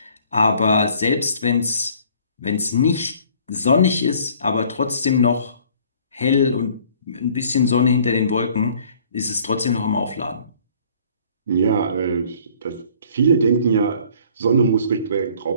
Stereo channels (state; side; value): inverted; both; correlation -0.56